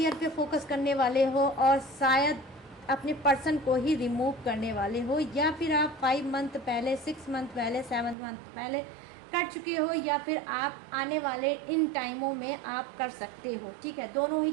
पे फोकस करने वाले हो और शायद अपने पर्सन को ही रिमूव करने वाले हो, या फिर आप 5 मंथ पहले, 6 मंथ पहले, 7 मंथ पहले कर चुके हो, या फिर आप आने वाले इन टाइमों में आप कर सकते हो। ठीक है, दोनों ही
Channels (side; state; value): left; drops out; at 8.2 s